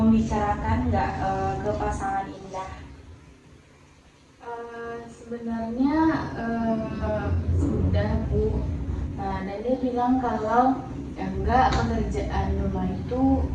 nggak ke pasangan Indah? Sebenarnya sudah Bu, dan dia bilang kalau enggak, pekerjaan rumah itu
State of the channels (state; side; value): identical; both; correlation 1.00